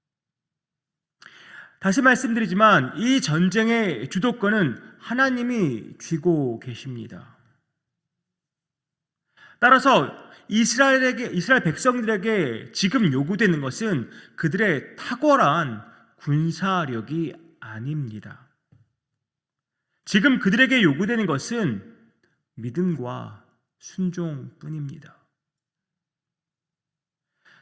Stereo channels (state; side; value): identical; both; correlation 1.00